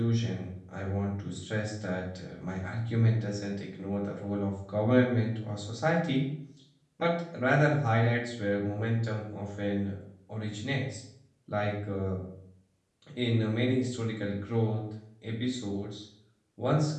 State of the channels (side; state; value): both; identical; correlation 1.00